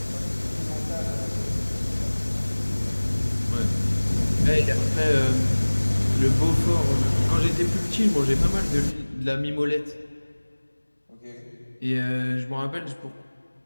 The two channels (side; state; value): both; inverted; correlation -1.00